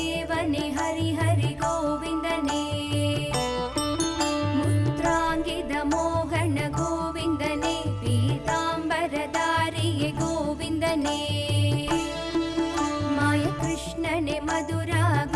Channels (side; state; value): both; identical; correlation 1.00